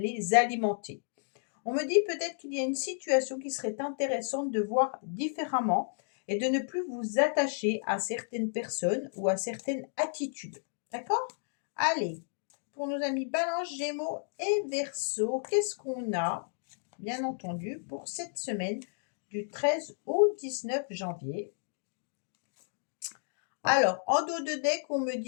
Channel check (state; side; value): silent; right; digital silence